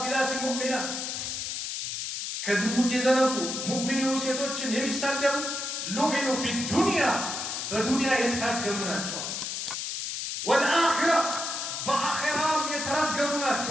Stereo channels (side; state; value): left; noise; hiss, 4 dB below the sound